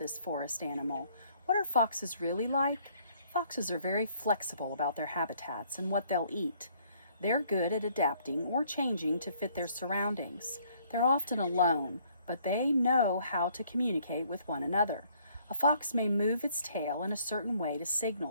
forest animal. What are foxes really like? Foxes are very flexible about their habitats and what they'll eat. They're good at adapting or changing to fit their surroundings. They're often alone, but they know how to communicate with one another. A fox may move its tail in a certain way to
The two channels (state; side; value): inverted; both; correlation -0.64